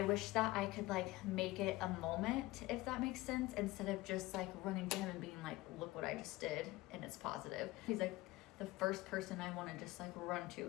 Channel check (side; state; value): right; quieter; 19.2 dB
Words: wish that I could like make it a moment, if that makes sense, instead of just like running to him and being like, look what I just did and it's positive. He's like the first person I want to just like run to